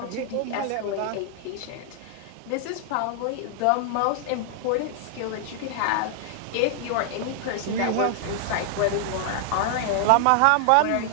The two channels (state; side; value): different; both; correlation 0.00